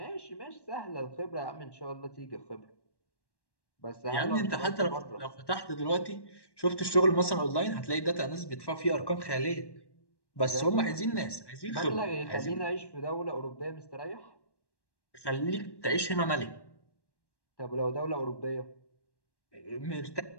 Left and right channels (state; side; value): late; right; 1.1 ms